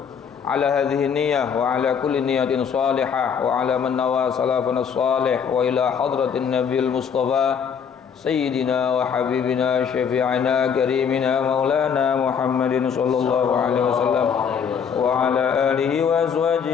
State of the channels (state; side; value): quieter; right; 7.1 dB